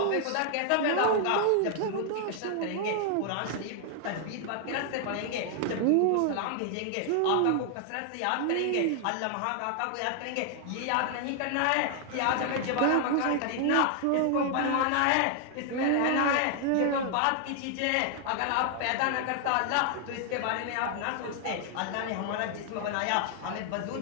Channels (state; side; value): different; both; correlation 0.00